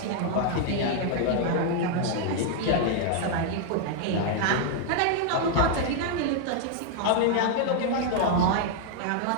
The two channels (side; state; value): both; different; correlation 0.00